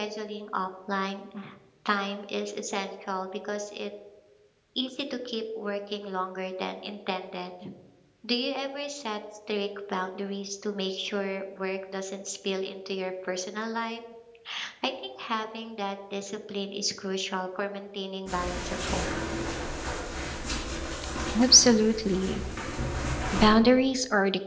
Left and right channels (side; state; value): both; identical; correlation 1.00